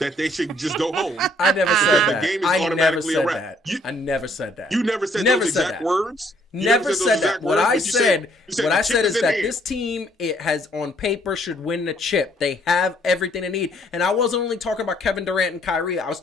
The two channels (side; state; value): both; normal; correlation 0.65